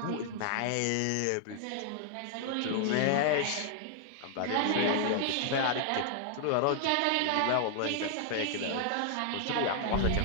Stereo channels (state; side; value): different; both; correlation -0.01